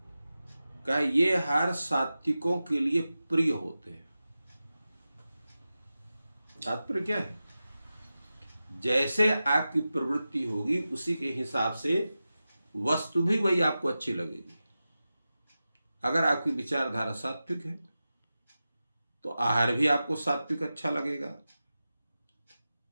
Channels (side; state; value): both; inverted; correlation -0.94